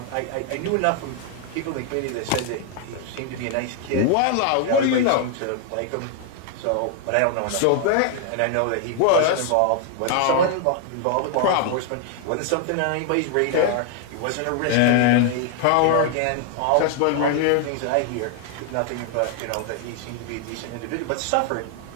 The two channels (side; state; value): both; different; correlation 0.00